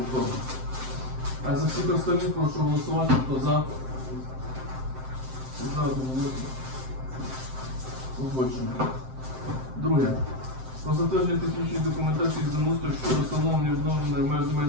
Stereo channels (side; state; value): left; late; 7.7 ms